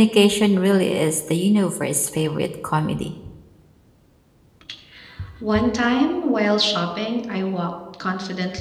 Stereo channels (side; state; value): both; identical; correlation 1.00